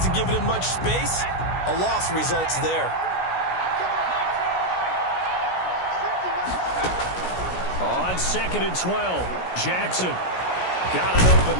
given him much space. A loss results there. On 2nd and 12, Jackson got an open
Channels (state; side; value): late; right; 16 ms